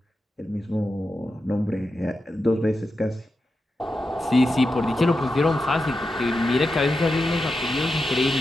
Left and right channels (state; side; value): normal; both; correlation 0.89